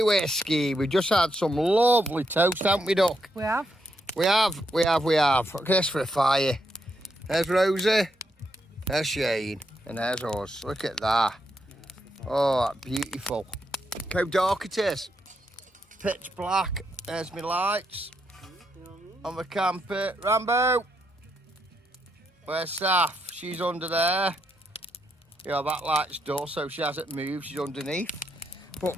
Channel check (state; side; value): normal; both; correlation 0.80